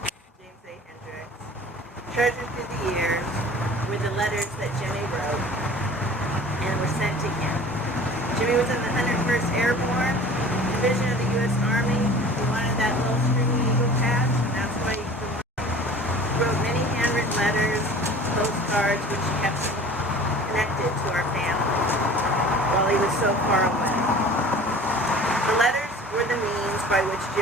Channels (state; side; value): normal; both; correlation 0.43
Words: James A. Hendrix, treasured through the years were the letters that Jimmy wrote and were sent to him. Jimmy was in the 101st Airborne Division of the U.S. Army. He wanted that little stringy eagle patch, and that's why he wrote many handwritten letters, postcards, which kept him connected to our family while he was so far away. The letters were the means by which